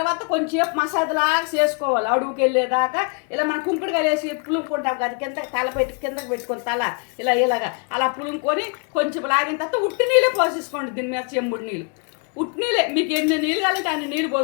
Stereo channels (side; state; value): right; quieter; 37.5 dB